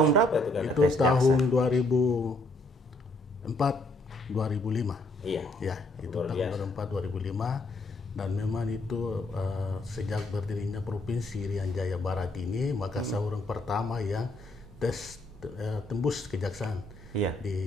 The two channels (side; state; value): both; normal; correlation 0.70